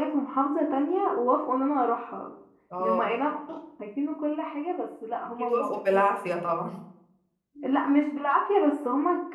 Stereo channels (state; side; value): identical; both; correlation 1.00